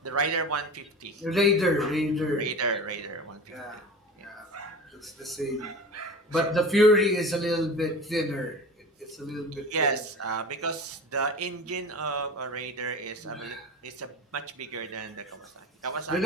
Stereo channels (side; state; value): both; normal; correlation 0.34